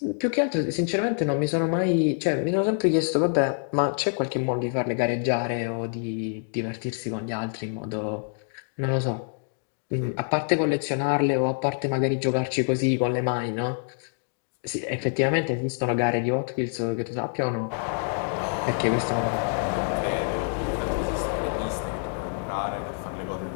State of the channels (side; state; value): right; silent; 59 dB below the other